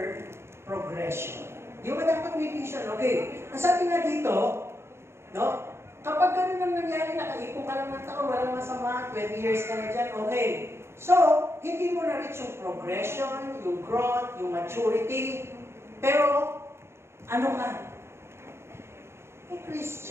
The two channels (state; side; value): late; left; 0.12 ms